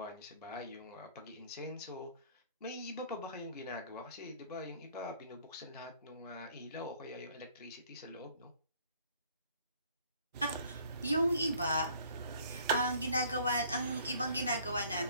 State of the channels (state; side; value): inverted; both; correlation -0.58